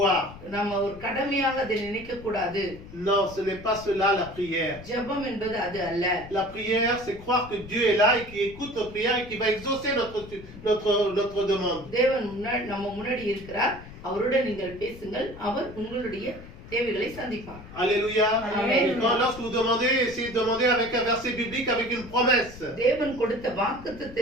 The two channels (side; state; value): left; noise; rumble, 16 dB below the sound